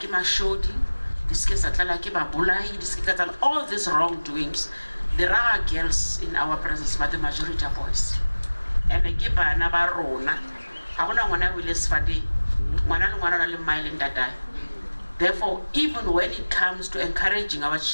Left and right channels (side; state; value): both; inverted; correlation -1.00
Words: mashodi, all these wrongdoings. There are girls in our presence, but the majority are boys. And I keep another rona. I want to will fadi. Therefore, even when it comes to encouraging our